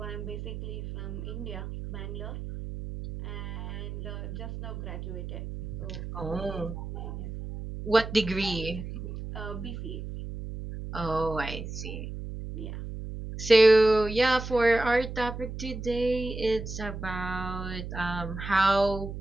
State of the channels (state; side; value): noise; right; hum, 7 dB below the sound